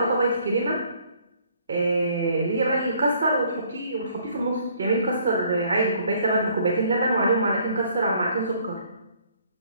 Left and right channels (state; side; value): inverted; both; correlation -0.62